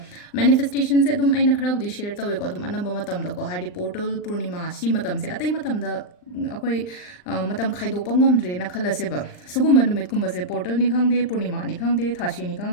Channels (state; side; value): late; right; 39 ms